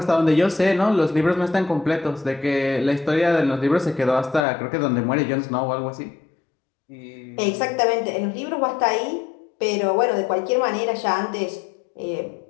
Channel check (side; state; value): right; drops out; at 4.5 s